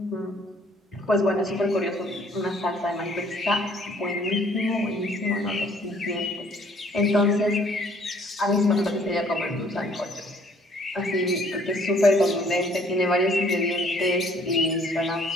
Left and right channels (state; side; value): normal; both; correlation 0.60